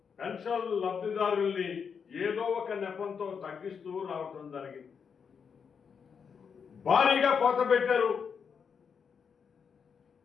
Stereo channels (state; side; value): quieter; right; 6.5 dB